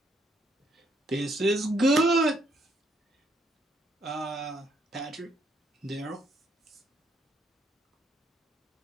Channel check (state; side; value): normal; both; correlation 0.71